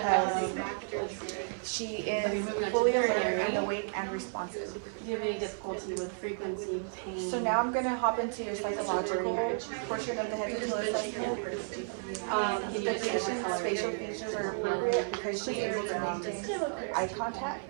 she is fully alert and awake and responsive. Do you have any difficulty with frequency, pain? So now I'm going to hop into your psychological portion of the head to toe assessment. The patient's facial features are appropriate because she's able to maintain eye contact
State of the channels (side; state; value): left; silent; 56 dB below the other